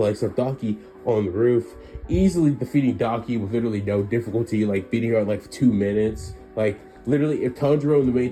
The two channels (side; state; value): both; identical; correlation 1.00